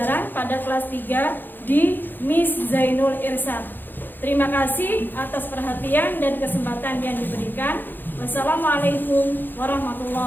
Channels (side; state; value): right; late; 0.092 ms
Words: pada kelas 3 di Miss Zainul Irsyad. Terima kasih atas perhatian dan kesempatan yang diberikan. Wassalamualaikum